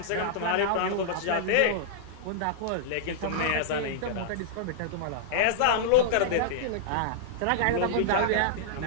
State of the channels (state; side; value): different; both; correlation -0.02